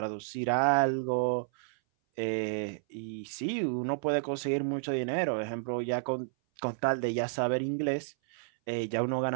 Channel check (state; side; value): silent; left; 57 dB below the other